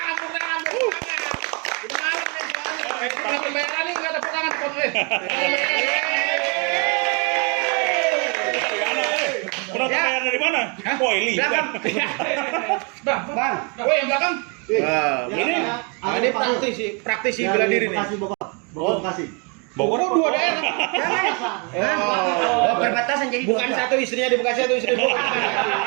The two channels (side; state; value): left; quieter; 34.5 dB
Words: Penonton dari mana? Ini. Bang. Yang belakang. Ini praktisi bela diri nih. Bogor 2 daerah. Perbatasan jadi Bukan satu istrinya di Bekasi, satu istri di Bogor.